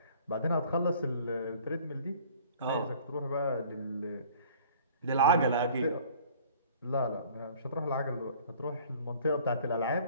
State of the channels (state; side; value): inverted; both; correlation -0.51